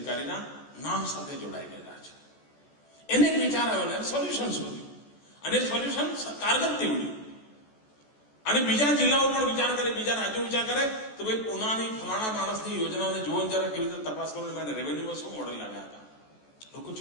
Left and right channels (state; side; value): late; right; 14 ms